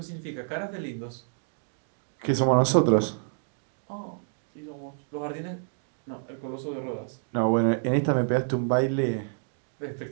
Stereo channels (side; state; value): left; silent; digital silence